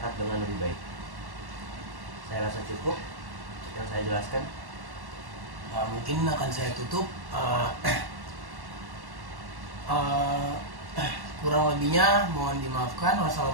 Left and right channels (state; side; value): late; left; 1.1 ms